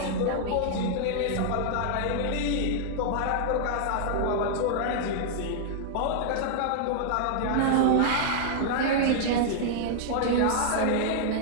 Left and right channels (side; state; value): both; different; correlation -0.01